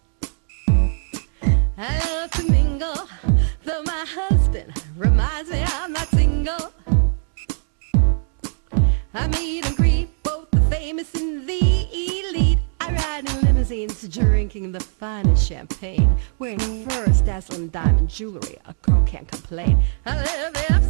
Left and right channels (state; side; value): silent; left; digital silence